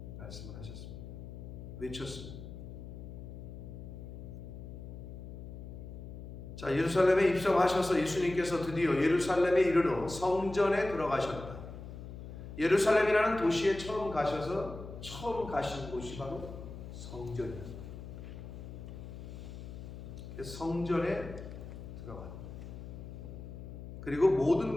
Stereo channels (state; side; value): noise; left; hum, 11 dB below the sound